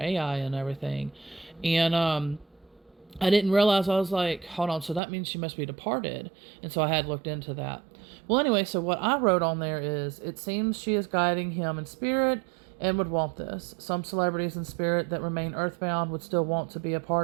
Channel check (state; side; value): drops out; left; at 5.0 s